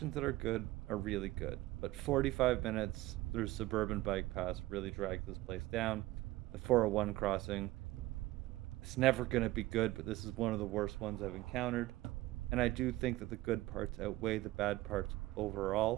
that are good are really good, but 45 minutes through suburban bike paths really drags this place down. The 401 crossing, it's never going to be good, but this is one of the worst ones I've encountered. And I do think that the good parts outweigh the bad parts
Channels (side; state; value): left; quieter; 17.8 dB